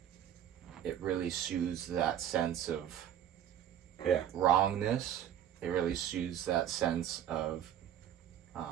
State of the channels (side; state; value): left; quieter; 10.3 dB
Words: it really soothes that sense of wrongness. It really soothes that sense of